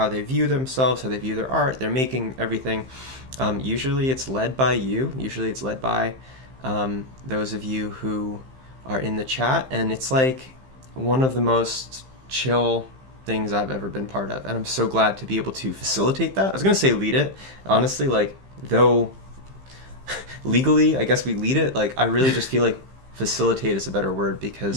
they view themselves, how they view their art, they're making everything. Usually it's led by you. Usually it's led by those of you who are in the chat, and it's like one of the most chill things I've ever been part of, and I'm so glad to be able to facilitate that. I was going to say lead it. Honestly, like, though legally I guess we lead it, like I really just feel like facilitate is a better word,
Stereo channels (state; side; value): late; left; 15 ms